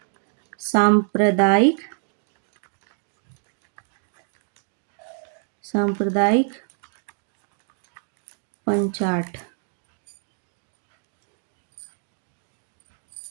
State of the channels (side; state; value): left; silent; 61 dB below the other